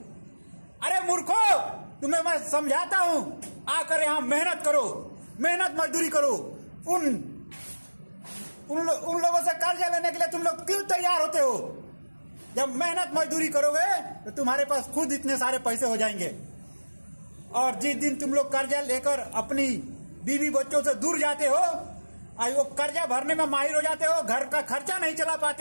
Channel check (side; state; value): both; inverted; correlation -1.00